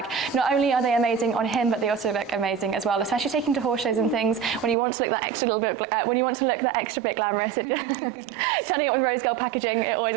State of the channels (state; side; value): drops out; left; at 4.8 s